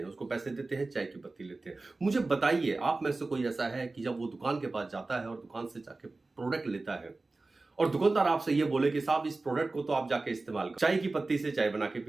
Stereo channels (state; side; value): quieter; left; 3.4 dB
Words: हैं, उसको पैसे देते हैं चाय की पत्ती लेते हैं। मुझे बताइए, आप में से कोई ऐसा है कि जब वो दुकान के पास जाता है और दुकान से जाके प्रोडक्ट लेता है और दुकानदार आपसे ये बोले कि साहब इस प्रोडक्ट को तो आप जाके इस्तेमाल करो, चाय की पत्ती से चाय बना के